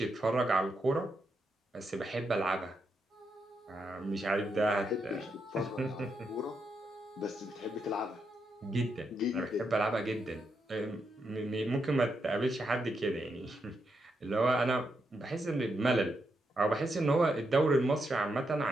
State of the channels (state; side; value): normal; both; correlation 0.82